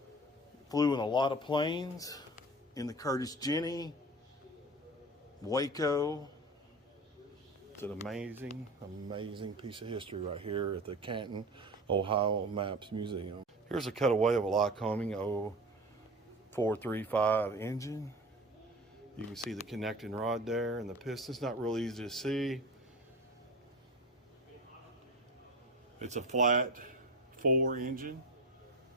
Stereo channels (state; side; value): normal; both; correlation 0.32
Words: Flew in a lot of planes, in the Curtiss Jenny, Waco. It's an amazing, amazing piece of history right here at the Canton, Ohio Maps Museum. Here's a cutaway of a Lycoming 0435 engine. You can see the connecting rod there and the piston's not really easy to see. It's a flat 4 engine.